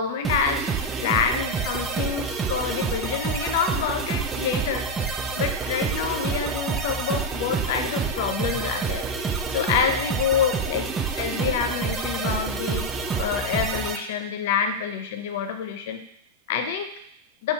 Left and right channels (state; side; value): normal; both; correlation 0.05